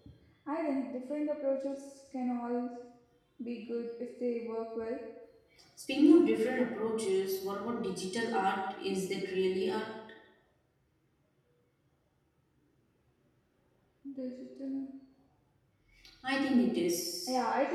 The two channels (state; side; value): identical; both; correlation 1.00